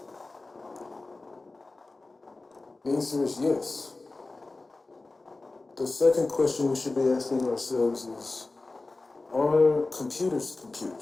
The answer is yes. The second question we should be asking ourselves is, are computers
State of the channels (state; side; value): quieter; right; 3.3 dB